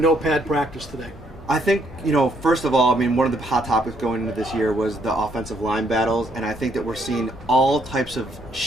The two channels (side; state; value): both; normal; correlation 0.70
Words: practice today? I think, first of all, one of the hot topics going into this year was the offensive line battles, and I think that we're seeing all types of